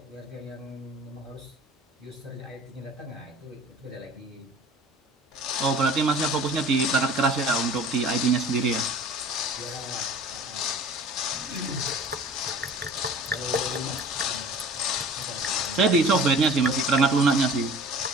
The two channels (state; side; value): normal; both; correlation 0.44